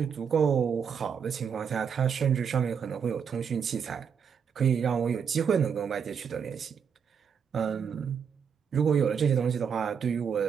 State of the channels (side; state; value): left; quieter; 7.0 dB